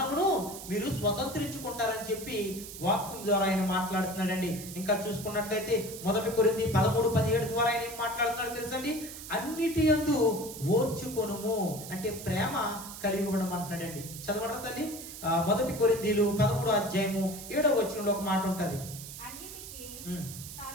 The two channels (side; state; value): right; noise; hiss, 12 dB below the sound